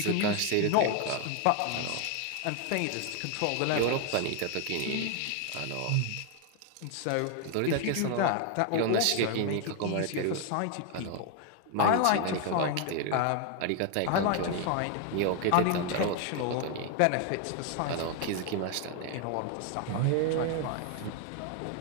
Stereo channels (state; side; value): different; both; correlation 0.00